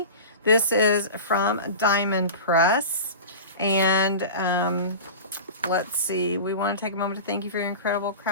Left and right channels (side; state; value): both; inverted; correlation -0.32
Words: This is from Diamond Press. And let's see, we want to take a moment to thank you for your incredible